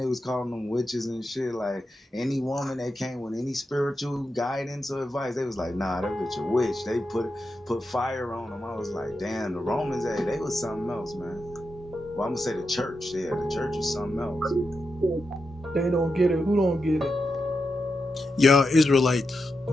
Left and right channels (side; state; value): both; normal; correlation 0.87